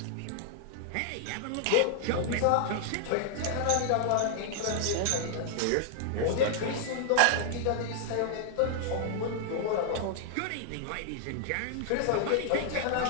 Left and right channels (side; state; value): both; different; correlation -0.01